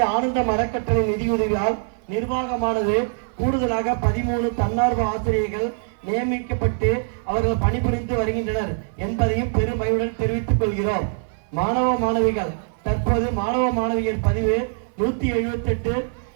ஆனந்தம் அறக்கட்டளை நிதியுதவியால் நிர்வாகமானது கூடுதலாக 13 தன்னார்வ ஆசிரியர்கள் நியமிக்கப்பட்டு அவர்கள் பணிபுரிந்து வருகின்றனர் என்பதையும் பெருமையுடன் தெரிவித்துக் கொள்கிறோம். மாணவ மாணவிகள். தற்போது மாணவ மாணவியர் பதிவு 178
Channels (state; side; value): silent; left; 57 dB below the other